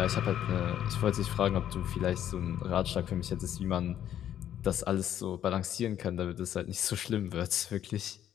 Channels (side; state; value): right; quieter; 10.7 dB